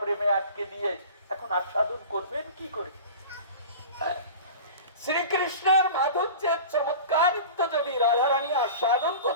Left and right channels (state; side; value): inverted; both; correlation -0.36